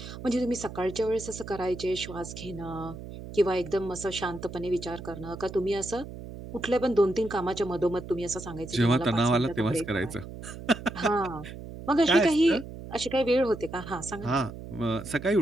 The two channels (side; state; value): right; noise; hum, 12 dB below the sound